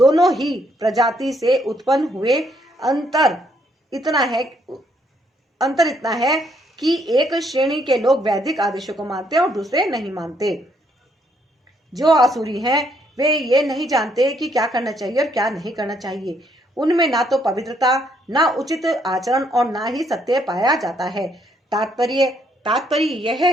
ही प्रजाति से उत्पन्न हुए। अंतर इतना है कि एक श्रेणी के लोग वैदिक आदेशों को मानते और दूसरे नहीं मानते। जो आसुरी हैं वे ये नहीं जानते कि क्या करना चाहिए और क्या नहीं करना चाहिए। उनमें ना तो पवित्रता, ना उचित आचरण और ना ही सत्य पाया जाता है। तात्पर्य यह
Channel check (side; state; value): both; normal; correlation 0.71